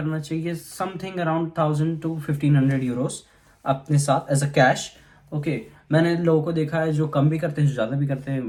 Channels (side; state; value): both; identical; correlation 1.00